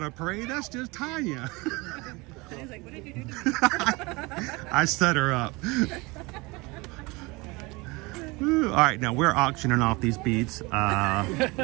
a parade, that's just Tanya. He's like, what did you do to me? I set her up. Ooh, all right, now we're auctioning off these beads. It's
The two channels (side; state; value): left; quieter; 24.7 dB